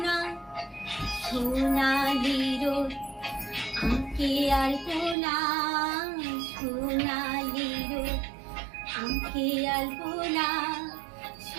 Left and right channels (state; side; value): drops out; left; at 5.2 s